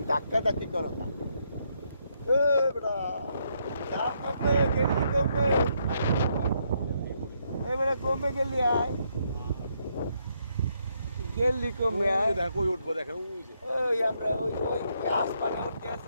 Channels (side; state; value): both; inverted; correlation -0.75